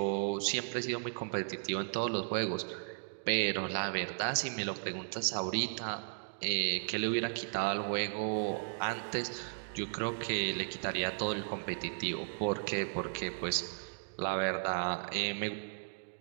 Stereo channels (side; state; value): left; silent; digital silence